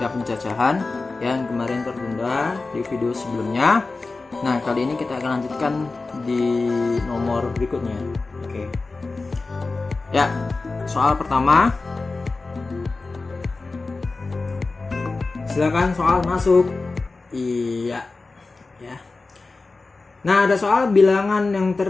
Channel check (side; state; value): right; quieter; 3.7 dB